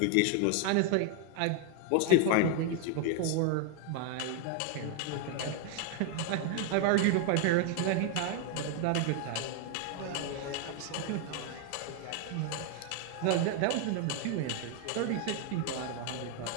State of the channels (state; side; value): different; both; correlation 0.01